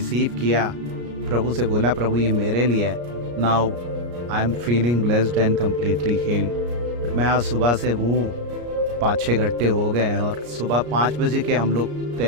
किया। प्रभु से बोला प्रभु ये मेरे लिए है। Now I am feeling blessed and completely healed. मैं आज सुबह से हूँ, 5-6 घंटे हो गए हैं और सुबह 5 बजे के हम लोग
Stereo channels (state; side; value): late; left; 34 ms